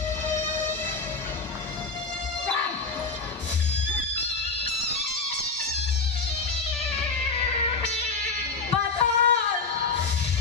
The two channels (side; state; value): right; quieter; 4.3 dB